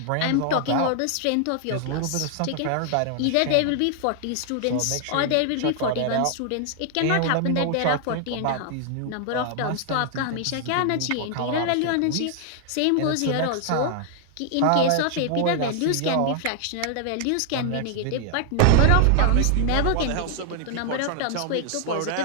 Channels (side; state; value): both; different; correlation 0.00